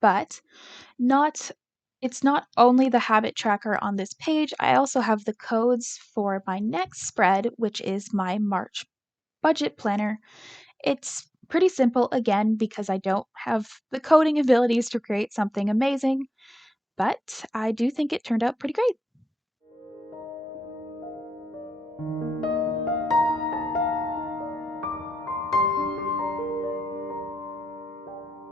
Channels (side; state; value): both; normal; correlation 0.92